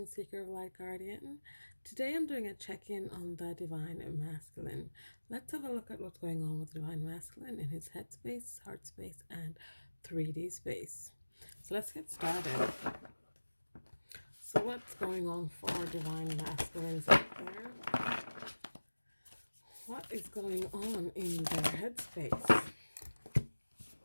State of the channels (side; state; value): both; inverted; correlation -1.00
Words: of Light Guardian. Today I'm doing a check-in on the Divine Masculine. Let's have a look at what's going on with the Divine Masculine in his head space, heart space, and 3D space. So let's get started. So what's going on for our Divine Masculines out there? What is going on in their head space?